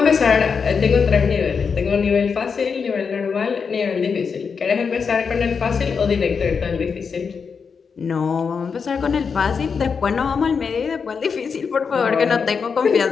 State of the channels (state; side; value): quieter; right; 5.8 dB